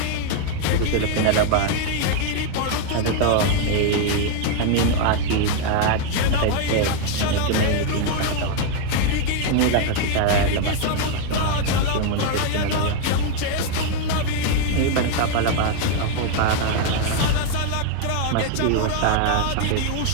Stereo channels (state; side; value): different; both; correlation 0.01